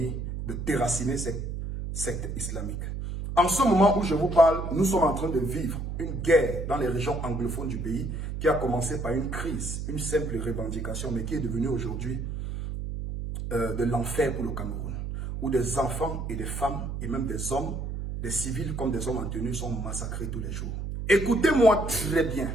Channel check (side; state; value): right; noise; hum, 5 dB below the sound